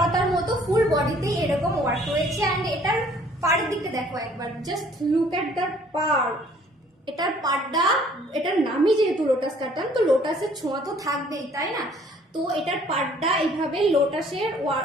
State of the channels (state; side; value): normal; both; correlation 0.58